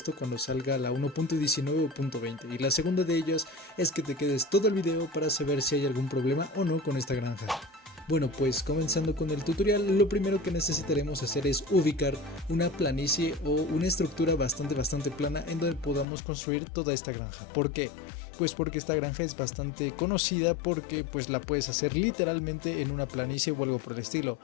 cuando salga la 1.19 o 1.20, y la segunda de ellas es que te quedes todo el video para saber si hay algún problema o no con esta granja. Bueno, pues comenzando con el tutorial, lo primero que necesitaremos hacer es ubicar una planicie o una estructura bastante plana en donde podamos construir toda esta granja. ¿Por qué? Pues porque esta granja es bastante conocida porque pues la puedes hacer literalmente en una planicie o algo por el estilo.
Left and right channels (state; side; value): drops out; right; at 16.1 s